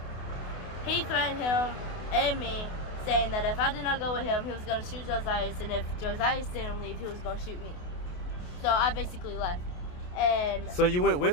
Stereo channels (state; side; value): late; right; 28 ms